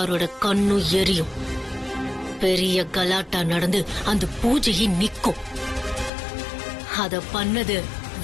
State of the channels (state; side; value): drops out; right; at 6.1 s